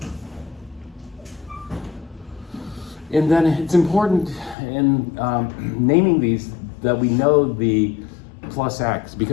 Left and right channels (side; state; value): right; drops out; at 4.5 s